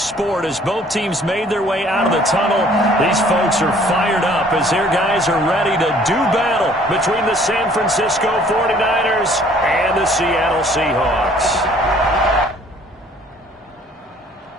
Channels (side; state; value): both; normal; correlation 0.57